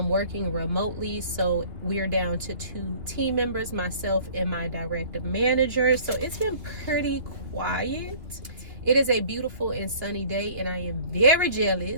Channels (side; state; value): left; late; 2.7 ms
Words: remotely. So we're down to 2 team members, myself and my direct manager. So it's been pretty quiet. It is a beautiful and sunny day, and I am very